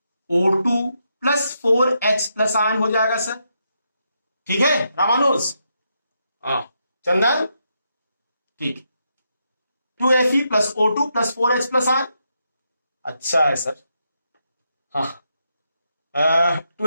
O2 plus 4H plus ion हो जाएगा सर, ठीक है रामानुज, हाँ चंदन, ठीक, 2Fe plus O2 plus 4H plus ion, अच्छा है सर, हाँ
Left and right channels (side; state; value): both; inverted; correlation -0.81